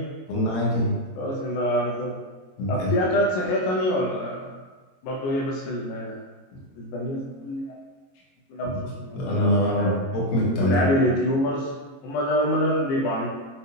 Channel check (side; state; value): right; late; 22 ms